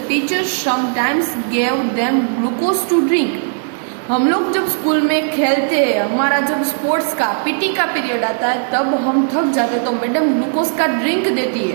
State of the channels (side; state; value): left; silent; 65 dB below the other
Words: teachers sometimes gave them glucose to drink। हम लोग जब स्कूल में खेलते हैं, हमारा जब स्पोर्ट्स का PT का पीरियड आता है तब हम थक जाते हैं तो मैडम ग्लूकोज का ड्रिंक देती